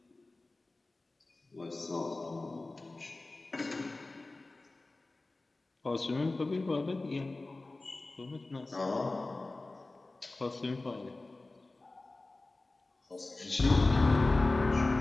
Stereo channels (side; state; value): right; quieter; 3.1 dB